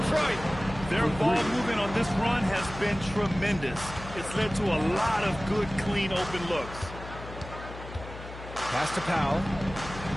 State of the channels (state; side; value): noise; left; hum, 13 dB below the sound